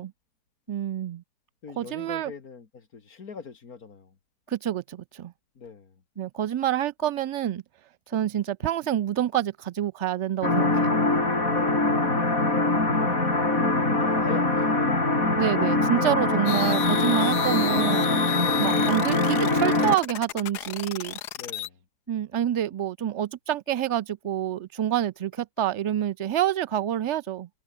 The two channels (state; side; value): late; right; 4.9 ms